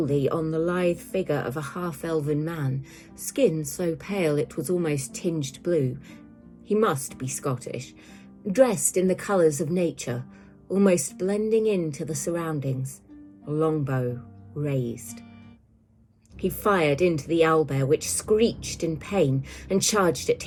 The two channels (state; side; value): identical; both; correlation 1.00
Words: on the lithe figure of a half-elven man, skin so pale it was almost tinged blue. He must be Scottish, dressed in the colours of nature, almost blending into the surroundings, a longbow raised. He fired into the owlbear, which screeched in pain and charged at